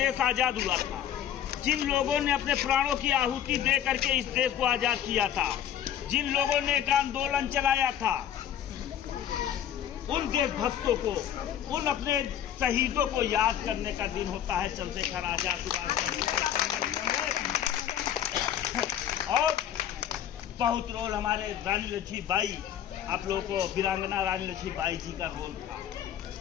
आजाद हुआ था, जिन लोगों ने अपने प्राणों की आहुति दे करके इस देश को आजाद किया था, जिन लोगों ने एक आंदोलन चलाया था, उन देशभक्तों को, उन अपने शहीदों को याद करने का दिन होता है चंद्रशेखर आजाद और बहुत रोल हमारे रानी लक्ष्मीबाई, आप लोगों को वीरांगना रानी लक्ष्मीबाई जी का रोल था।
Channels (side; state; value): right; quieter; 10.3 dB